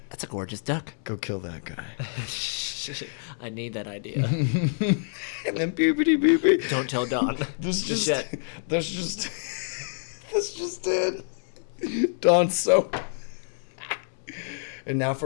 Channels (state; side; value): silent; right; digital silence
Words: That's a gorgeous duck. go kill that guy. I need that idea. And then beepity beepity. Don't tell Don. That's Just just yet. that's just that's just it. Dawn soap. And now